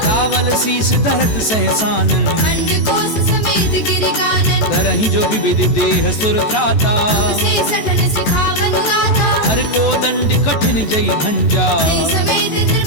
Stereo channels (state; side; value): late; right; 14 ms